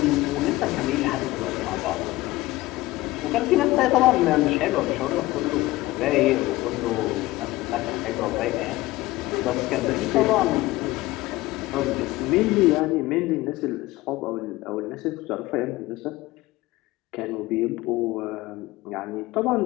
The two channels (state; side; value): quieter; right; 18.5 dB